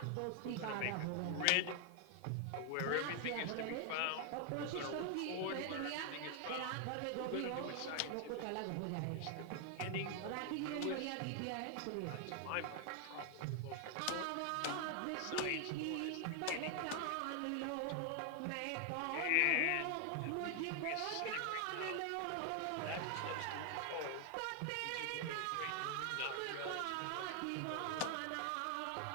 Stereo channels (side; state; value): both; different; correlation 0.00